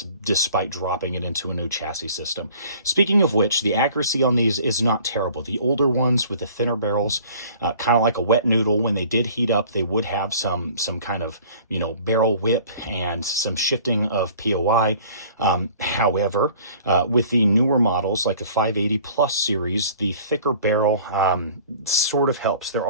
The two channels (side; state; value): both; inverted; correlation -0.49